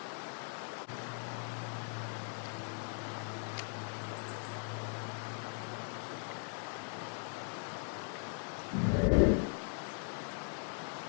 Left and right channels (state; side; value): silent; right; 52 dB below the other